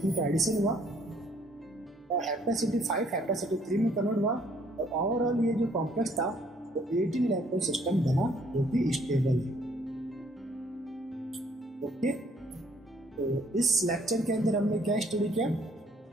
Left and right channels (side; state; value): both; normal; correlation 0.63